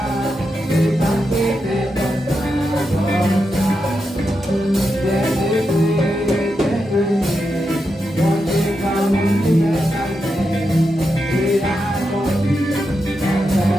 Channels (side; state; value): both; normal; correlation 0.86